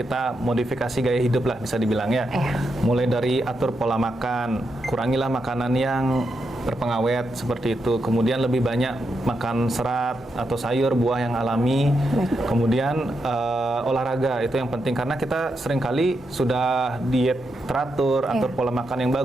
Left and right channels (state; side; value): normal; both; correlation 0.84